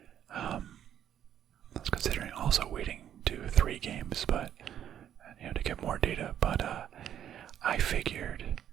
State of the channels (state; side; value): quieter; left; 10.1 dB